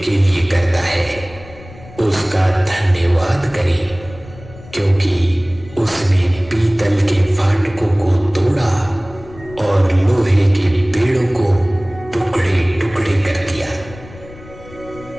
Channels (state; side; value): noise; left; rumble, 19 dB below the sound